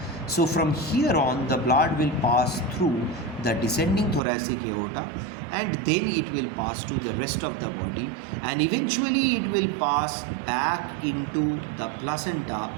So from here on the blood will pass through the descending thoracic aorta and then it will pass to the rest of the body and eventually it will pass back into the placenta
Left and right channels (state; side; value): drops out; left; at 4.2 s